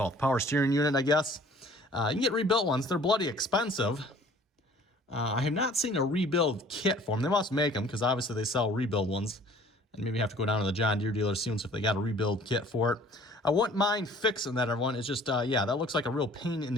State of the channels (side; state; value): both; normal; correlation 0.52